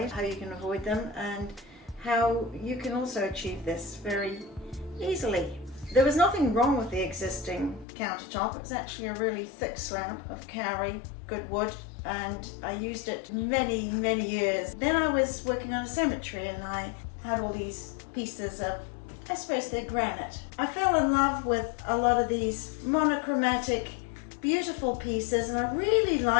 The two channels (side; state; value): right; drops out; at 7.9 s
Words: how you can avoid them, and how you can also achieve this very easily. There was nothing wrong with the existing countertop. It was actually a really thick slab of kauri, good wood, and I used it many years. Then I was working on a cemetery and I had all these pieces of, I suppose they're granite. I fell in love with a lot of these monochromatic, beautiful pieces, and I really